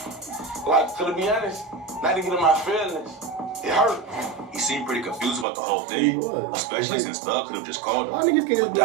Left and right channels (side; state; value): left; drops out; at 5.5 s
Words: Like, to be honest, not to get in my feelings, it hurt. He seemed pretty confused about the whole thing, especially since Thug could have just called Why him. niggas can't But